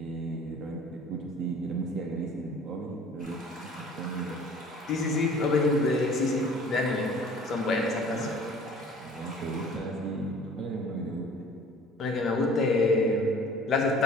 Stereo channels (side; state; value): both; normal; correlation 0.49